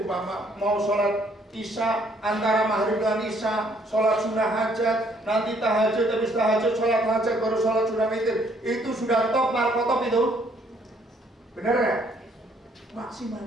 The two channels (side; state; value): both; normal; correlation 0.65